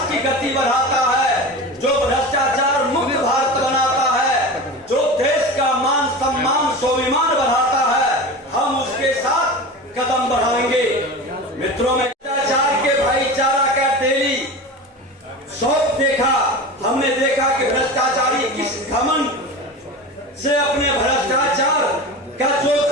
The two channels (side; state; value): both; normal; correlation 0.29